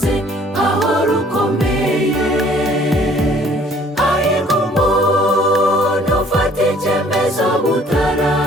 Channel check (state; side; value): normal; both; correlation 0.57